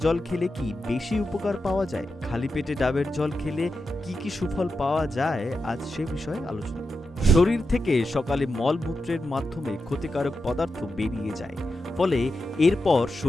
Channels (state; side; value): normal; both; correlation 0.89